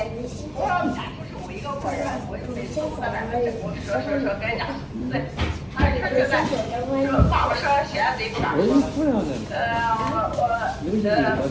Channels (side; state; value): both; identical; correlation 1.00